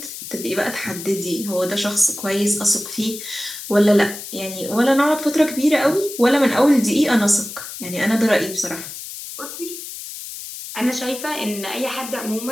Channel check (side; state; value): left; noise; hiss, 10 dB below the sound